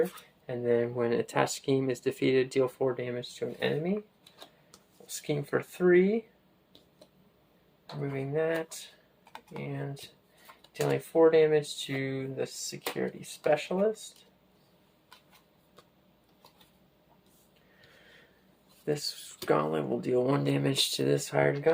and then when an attached scheme is defeated, deal 4 damage to an enemy. We'll scheme for 3, removing that, and dealing 4 damage to the security specialist. This gauntlet will deal 1 damage to this hired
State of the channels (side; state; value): both; identical; correlation 1.00